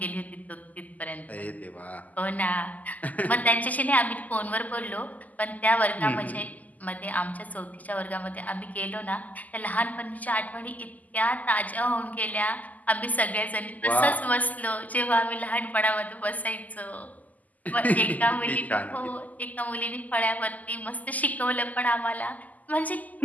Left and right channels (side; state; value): right; late; 0.079 ms